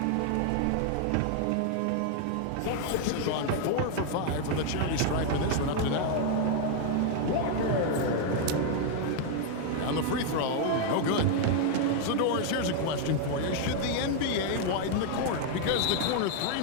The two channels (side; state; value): both; different; correlation 0.00